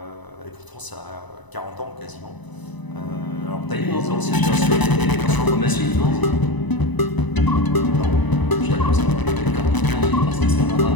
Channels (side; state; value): right; late; 1.0 ms